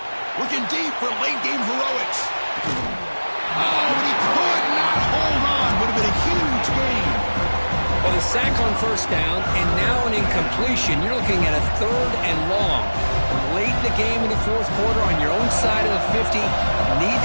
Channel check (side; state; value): both; inverted; correlation -1.00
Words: Looking deep for late game heroics. Oh, but he could not hold on. Would have been a huge gain. Well, the sack on 1st down, and now an incompletion. You're looking at a 3rd and long. Late in the game in the 4th quarter on your own side of the 50. Need